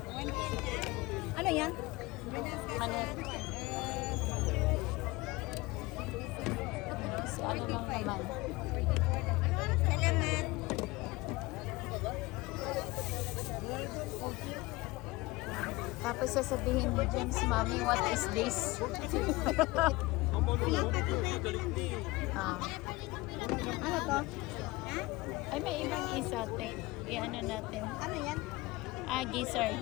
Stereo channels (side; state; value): right; quieter; 21.6 dB